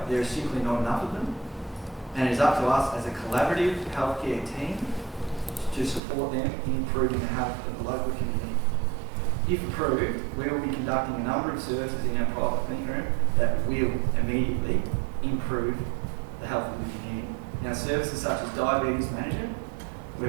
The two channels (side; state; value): left; drops out; at 6.0 s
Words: There is simply not enough of them. And it is up to us as a collaborative healthcare team to support them in improving the health of the local community. If approved, we will be conducting a number of services in our private clinic room that will immediately improve the health of the community. Now, services such as diabetes management,